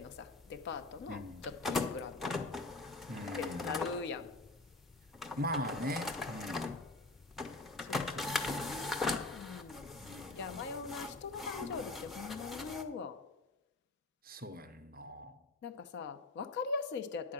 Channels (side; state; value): right; quieter; 3.0 dB